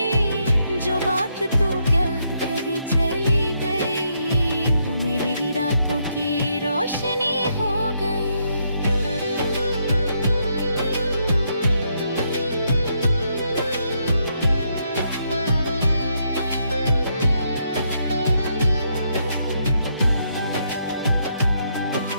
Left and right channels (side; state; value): both; inverted; correlation -0.76